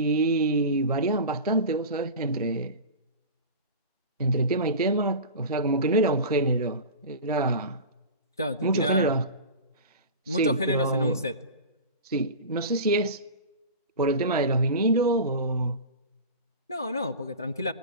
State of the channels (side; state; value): both; inverted; correlation -0.31